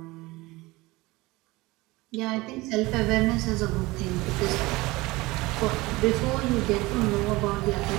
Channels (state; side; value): quieter; left; 21.2 dB